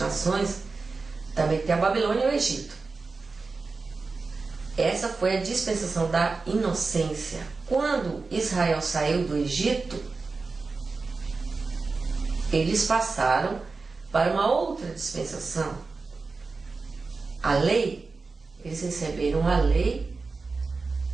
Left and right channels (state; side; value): quieter; left; 4.1 dB